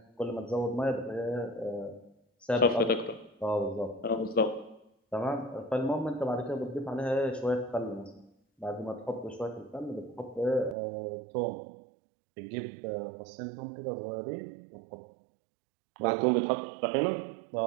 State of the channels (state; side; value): drops out; left; at 10.8 s